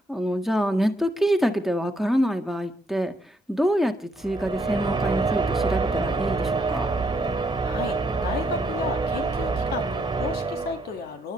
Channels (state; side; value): normal; both; correlation 0.74